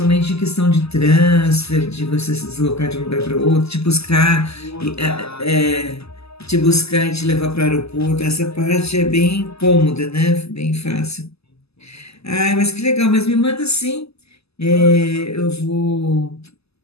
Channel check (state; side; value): late; right; 0.79 ms